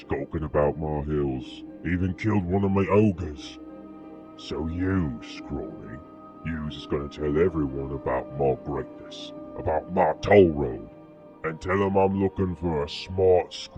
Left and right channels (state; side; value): identical; both; correlation 1.00